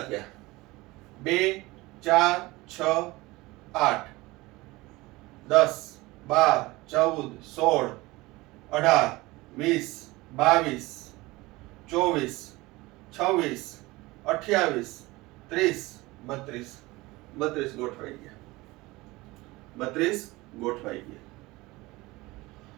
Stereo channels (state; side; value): quieter; left; 21.1 dB